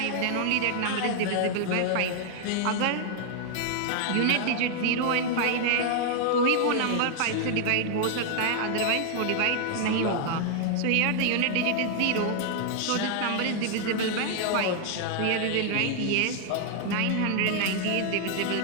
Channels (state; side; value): different; both; correlation 0.00